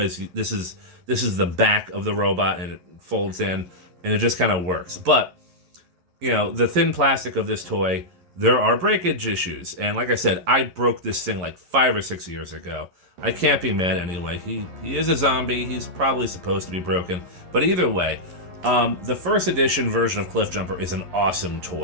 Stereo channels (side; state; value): left; late; 11 ms